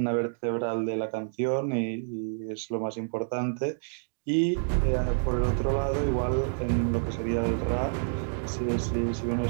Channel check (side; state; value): left; silent; digital silence